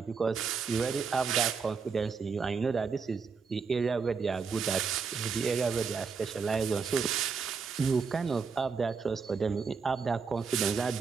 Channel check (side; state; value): left; quieter; 5.4 dB